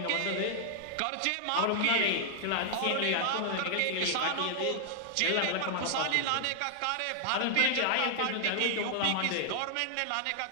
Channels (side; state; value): both; different; correlation 0.00